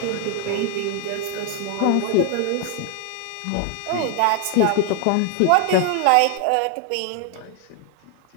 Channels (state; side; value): different; both; correlation 0.00